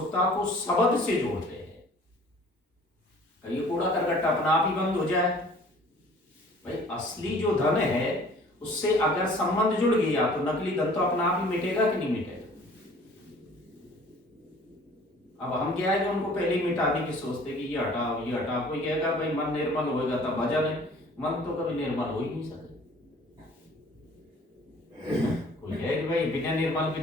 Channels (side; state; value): both; normal; correlation 0.51